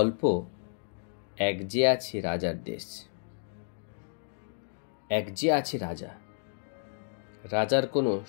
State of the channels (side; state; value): right; silent; 57 dB below the other